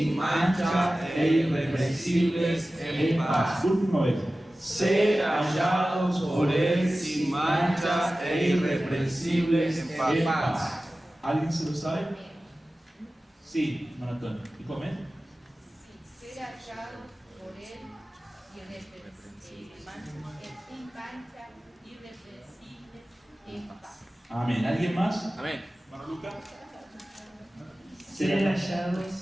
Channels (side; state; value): both; normal; correlation 0.96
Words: mancha e irreprensibles en paz. Última vez. Ser hallados por él sin mancha e irreprensibles en paz. ¿Alguien se lo sabe? Sí, Maratón. ¿Y come? Sí, ser hallados por él sin mancha, irreprensibles en paz. Amén. ¿Alguien más? Amén. Hermano Lucas. Ser